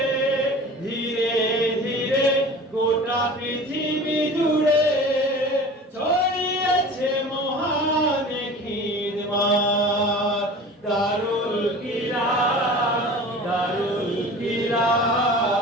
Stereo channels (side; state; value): both; normal; correlation 0.39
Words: ধীরে ধীরে গোটা পৃথিবী জুড়ে ছড়িয়েছে মহান খিদমত দারুল কিরাত দারুল